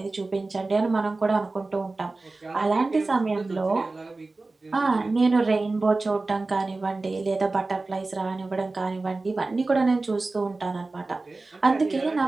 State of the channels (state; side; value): quieter; left; 3.4 dB